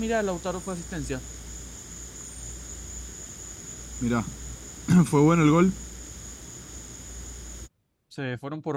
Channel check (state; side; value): identical; both; correlation 1.00